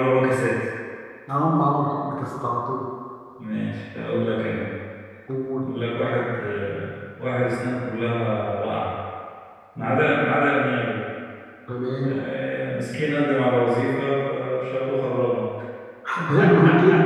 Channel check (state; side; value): identical; both; correlation 1.00